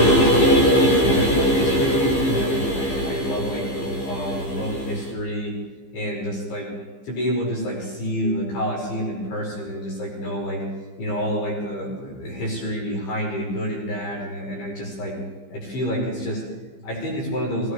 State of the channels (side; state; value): right; late; 15 ms